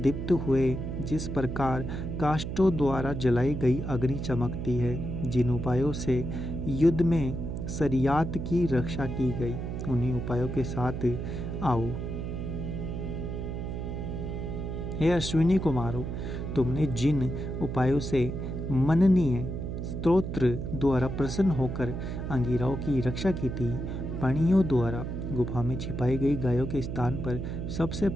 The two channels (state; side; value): noise; right; hum, 5 dB below the sound